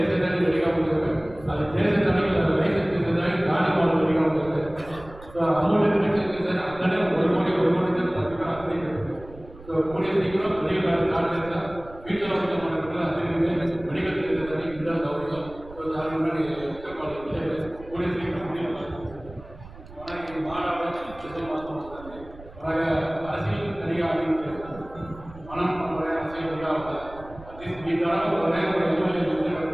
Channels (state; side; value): noise; right; rumble, 18 dB below the sound